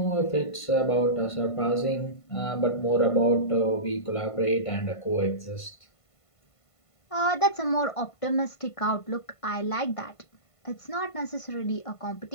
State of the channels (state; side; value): late; right; 1.5 ms